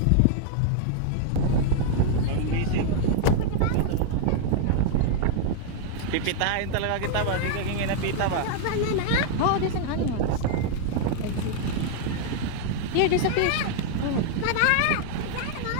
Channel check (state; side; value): different; both; correlation -0.01